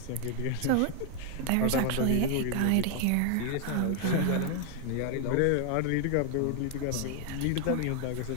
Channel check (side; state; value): both; different; correlation 0.00